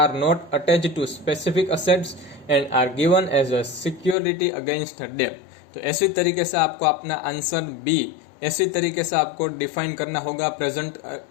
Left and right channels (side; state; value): right; drops out; at 4.2 s